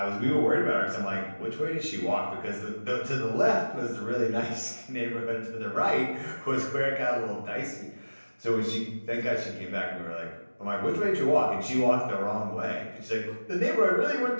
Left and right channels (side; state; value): both; inverted; correlation -1.00